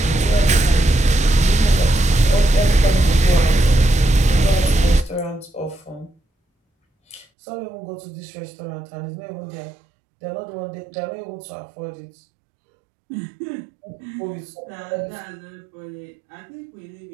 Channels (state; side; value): drops out; left; at 7.2 s